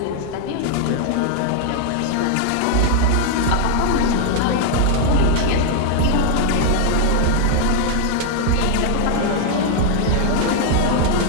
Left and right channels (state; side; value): different; both; correlation 0.00